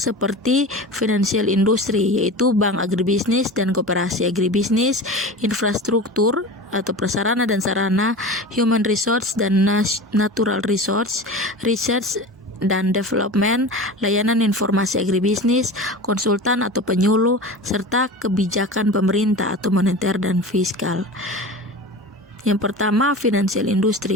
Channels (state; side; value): normal; both; correlation 0.32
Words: seperti financial industry, yaitu bank agribisnis dan koperasi agribisnis, infrastruktur atau prasarana dan sarana, human resource dan natural resource, research dan development, layanan informasi agribisnis, konsultan atau penyuluh, serta kebijakan pemerintah atau moneter dan fiskal. Yang pertama, financial